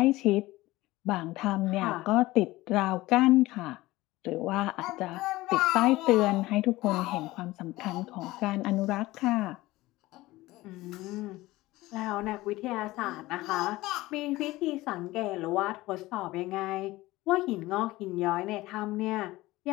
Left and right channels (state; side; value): quieter; right; 18.6 dB